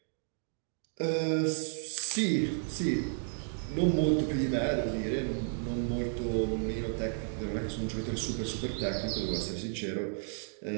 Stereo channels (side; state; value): left; silent; 56 dB below the other